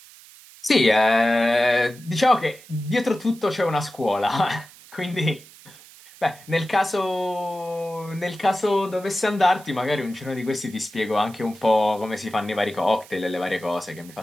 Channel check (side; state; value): right; noise; hiss, 22 dB below the sound